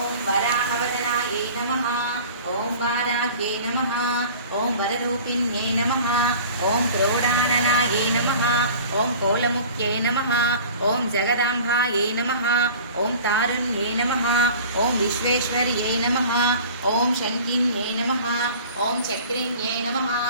वराहवदनायै नमः। ओम वाराह्यै नमः। ओम वररूपिण्यै नमः। ओम क्रोडाननायै नमः। ओम कोलमुख्यै नमः। ओम जगदाम्बायै नमः। ओम तारुण्यै नमः। ओम विश्वेश्वर्यै नमः। ओम शङ्किन्यै नमः। ओम चक्रिण्यै नमः।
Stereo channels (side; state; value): both; inverted; correlation -0.43